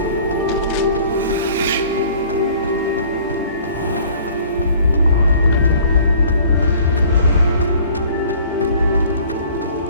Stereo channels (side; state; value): both; inverted; correlation -0.52